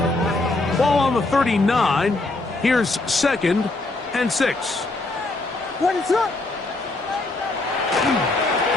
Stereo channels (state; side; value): quieter; right; 3.0 dB